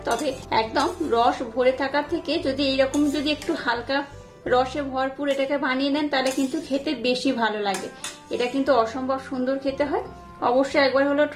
তবে একদম রস ভরে থাকার থেকে যদি এইরকম যদি একটু হালকা রসে ভরপুর এটাকে বানিয়ে নেন তাহলে কিন্তু খেতে বেশি ভালো লাগে। এটা কিন্তু অসম্ভব সুন্দর খেতে হয়। অবশ্যই একবার হলেও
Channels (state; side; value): identical; both; correlation 1.00